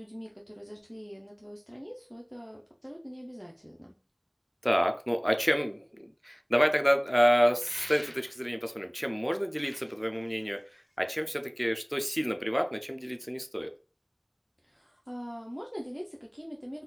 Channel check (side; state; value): both; identical; correlation 1.00